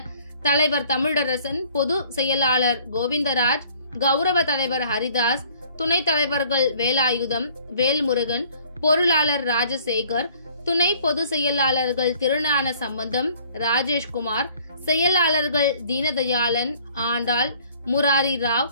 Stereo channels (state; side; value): inverted; both; correlation -0.57